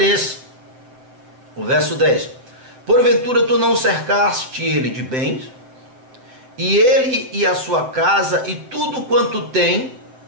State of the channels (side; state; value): left; late; 7.8 ms